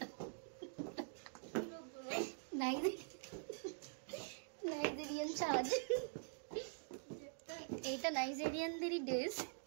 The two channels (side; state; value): left; silent; digital silence